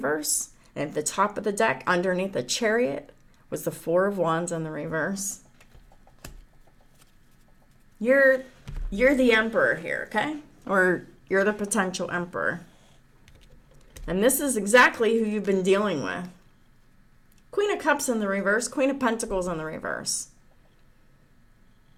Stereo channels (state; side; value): identical; both; correlation 1.00